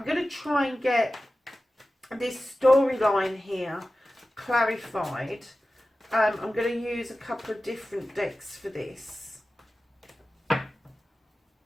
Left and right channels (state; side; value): normal; both; correlation 0.95